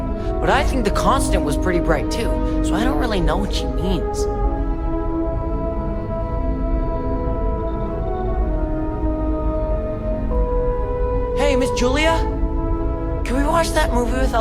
but I think the Constant was pretty bright too, so I don't really know what she means. Hey, Miss Julia? Can we watch that movie with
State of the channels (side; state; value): both; identical; correlation 1.00